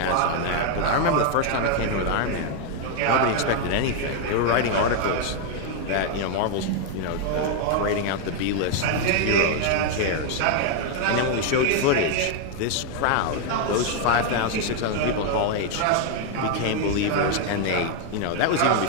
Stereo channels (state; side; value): different; both; correlation 0.00